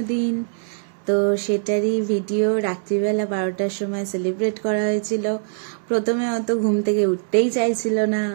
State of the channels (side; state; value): left; silent; 64 dB below the other